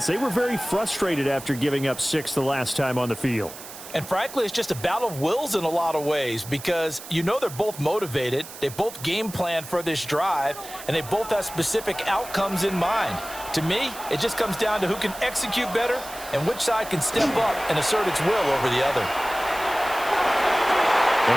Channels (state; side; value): noise; right; hiss, 14 dB below the sound